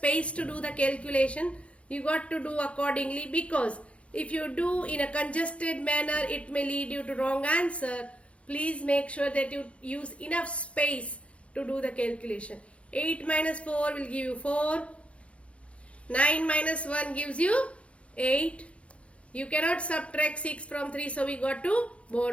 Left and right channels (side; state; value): right; late; 0.062 ms